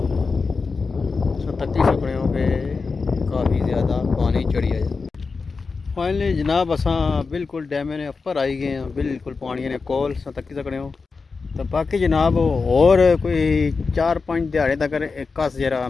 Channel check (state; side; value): quieter; right; 4.6 dB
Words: तत्ती सकड़ियों पे काफ़ी ज़्यादा पानी चढ़ी है। फाइनली जनाब असा बिल्कुल डैम ने उपर आई गए हैं, बिल्कुल पानी ने कोल तत्ती सकड़ियों। तो बाकी जनाब और कोई 4-5 दिहाड़े तक कस जरा